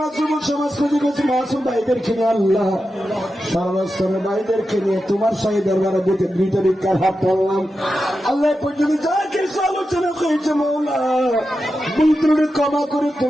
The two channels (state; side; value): normal; both; correlation 0.90